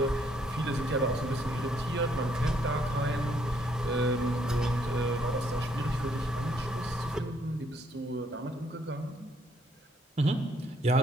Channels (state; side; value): normal; both; correlation 0.70